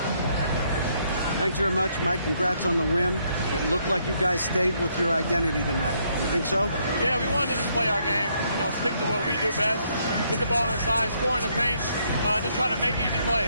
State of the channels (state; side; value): inverted; both; correlation -0.72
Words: Thanks very much, Mike. Congrats on the win. It looked like you guys stayed with your identity tonight. You think so? Yeah, we wanted to just play our game, stick to what we do best, get the ball inside, score in the paint, just try to make easy plays.